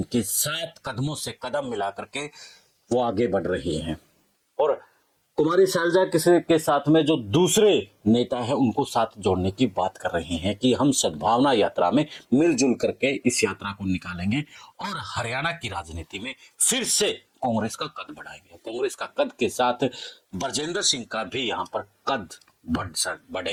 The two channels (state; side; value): identical; both; correlation 1.00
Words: 7 कदमों से कदम मिला करके वो आगे बढ़ रही हैं, और कुमारी शैलजा के साथ में जो दूसरे नेता हैं उनको साथ जोड़ने की बात कर रहे हैं कि हम सद्भावना यात्रा में मिलजुल करके इस यात्रा को निकालेंगे और हरियाणा की राजनीति में फिर से कांग्रेस का कद बढ़ाएंगे। कांग्रेस का कद के साथ ब्रजेंद्र सिंह का भी यहाँ पर कद